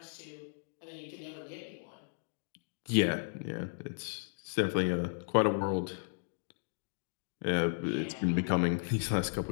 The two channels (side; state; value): right; silent; digital silence